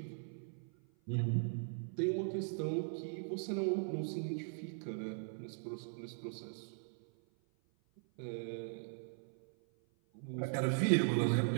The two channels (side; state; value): left; silent; 52 dB below the other